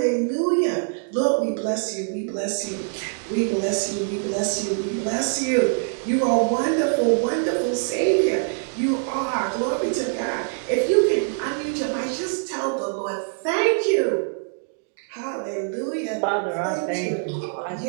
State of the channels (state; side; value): silent; left; digital silence